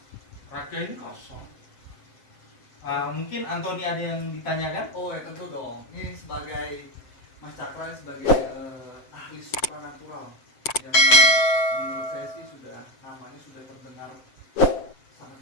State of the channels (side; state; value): right; late; 7.7 ms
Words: raga ini kosong. Mungkin Anthony ada yang ditanyakan? Oh ya tentu dong. Ini sebagai Mas Cakra sebagai ahli supranatural yang menurut saya sih namanya sudah terdengar sangat